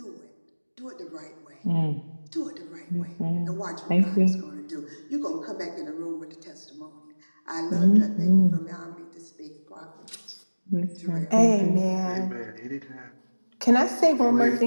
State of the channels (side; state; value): both; inverted; correlation -1.00